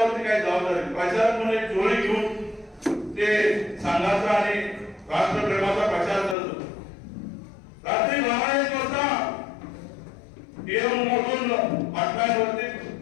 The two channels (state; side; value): drops out; right; at 6.4 s